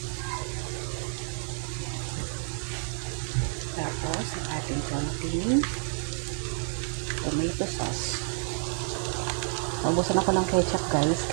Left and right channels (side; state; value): left; silent; 57 dB below the other